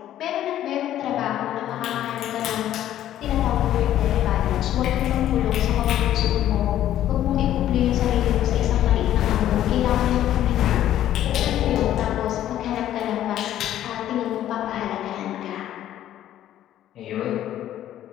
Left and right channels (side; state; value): right; quieter; 12.1 dB